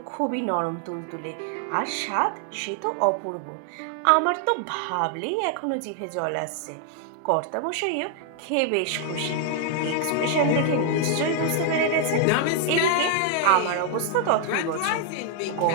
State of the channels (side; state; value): both; different; correlation 0.00